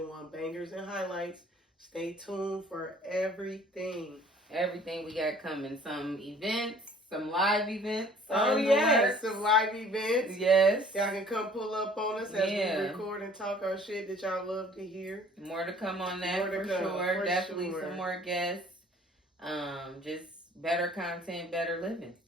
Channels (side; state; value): both; normal; correlation 0.54